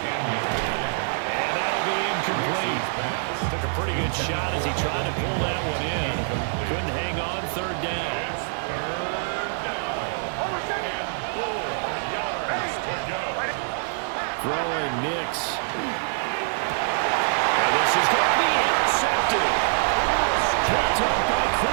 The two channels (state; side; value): silent; left; 59 dB below the other